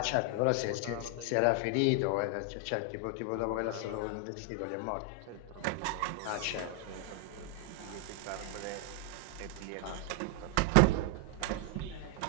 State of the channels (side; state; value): both; different; correlation 0.00